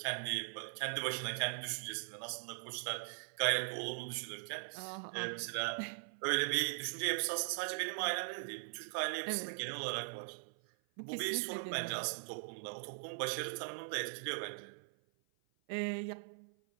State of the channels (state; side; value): silent; left; 51 dB below the other